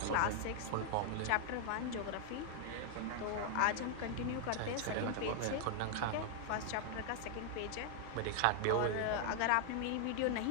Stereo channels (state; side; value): different; both; correlation 0.00